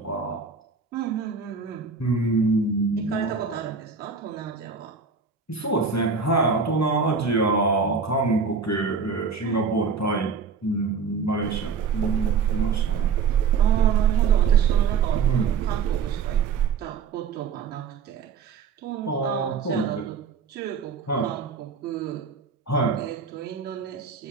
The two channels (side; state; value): left; quieter; 5.6 dB